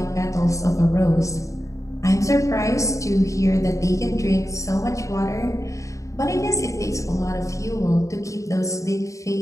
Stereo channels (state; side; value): late; right; 0.15 ms